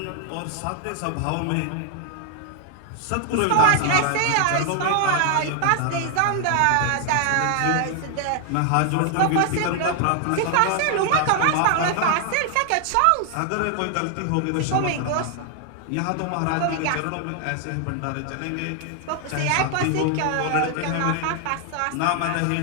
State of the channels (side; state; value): both; different; correlation 0.00